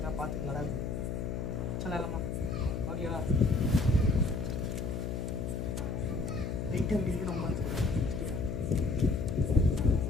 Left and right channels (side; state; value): left; noise; hum, 3 dB below the sound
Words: பார்த்துட்டு நடக்குது சொல்லலாமா? ஓகேவா? லைட்டாக அப்படிங்கிறது ரொம்ப எடுத்துக்கூடாது. சரியா?